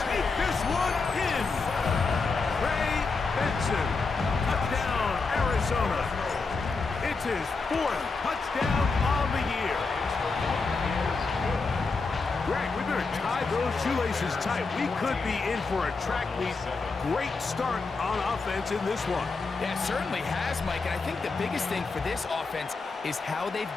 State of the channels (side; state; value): right; quieter; 4.2 dB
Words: take this one in. Trey Benson. Touchdown, Arizona. It's his 4th touchdown on the year. Greg, we better tie those shoelaces tight. We could be in for a track meet. Great start on offense in this one. Yeah, it certainly has, Mike. And I think the biggest thing for this offense is how they've